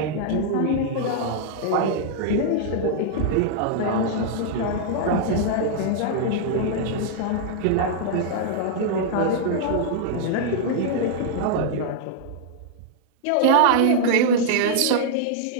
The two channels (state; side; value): different; both; correlation -0.01